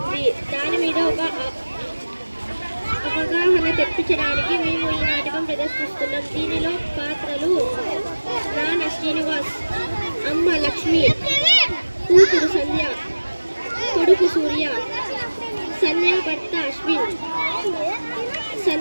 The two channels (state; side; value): inverted; both; correlation -1.00